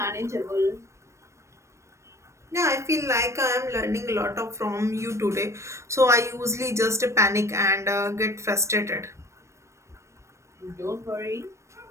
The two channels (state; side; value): late; left; 0.14 ms